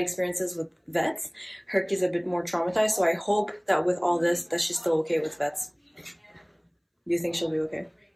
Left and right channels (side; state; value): both; identical; correlation 1.00